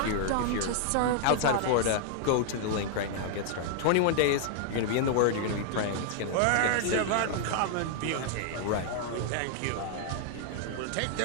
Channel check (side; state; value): both; different; correlation -0.01